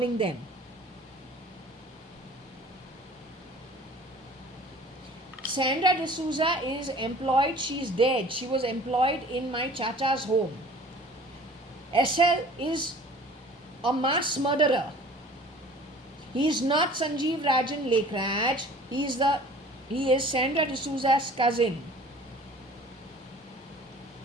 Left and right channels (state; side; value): normal; both; correlation 0.47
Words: them. Sandra D'Souza is employed, she is dead. She was employed in my chacha's home. SL is a mass murderer. He is not Sanjeev Rajan Lekraj. He is Sandra D'Souza's cousin.